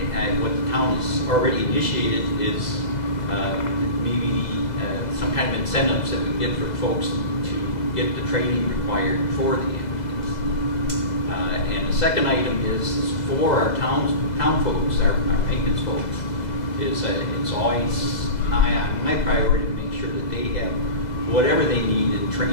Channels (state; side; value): late; right; 2.0 ms